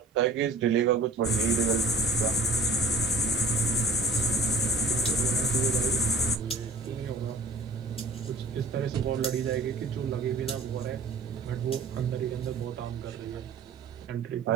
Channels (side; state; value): left; quieter; 3.1 dB